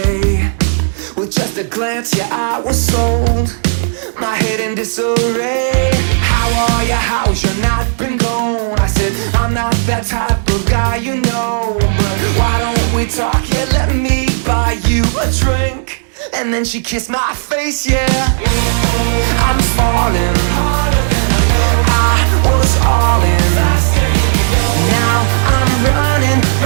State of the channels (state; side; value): silent; left; digital silence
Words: With just a glance, yeah, I was sold. My head in disarray. How are you? How's your night been gone? I said, I'm not that type of guy, you know. But why don't we talk? Yeah, let me buy you a drink. And then she kissed my face, yeah. I'm falling. I was all in. Now I'm running,